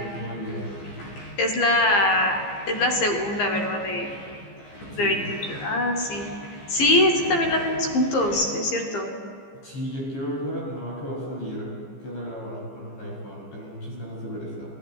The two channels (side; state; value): right; late; 15 ms